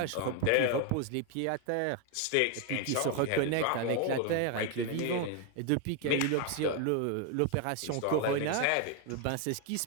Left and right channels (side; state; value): both; different; correlation 0.01